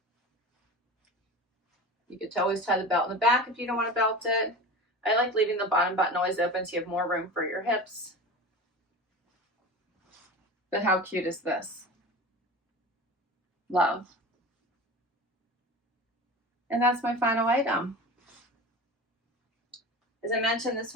You could always tie the belt in the back if you don't want to belt it. I like leaving the bottom button always open so you have more room for your hips. But how cute is this? Love. And that's my final item. As I mentioned, this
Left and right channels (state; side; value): normal; both; correlation 0.32